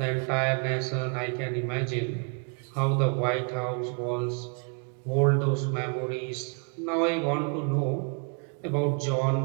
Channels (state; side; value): quieter; left; 39.2 dB